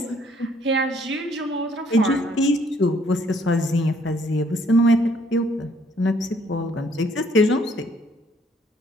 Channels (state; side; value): normal; both; correlation 0.64